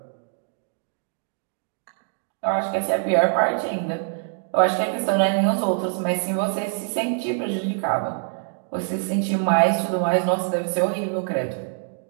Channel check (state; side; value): silent; left; digital silence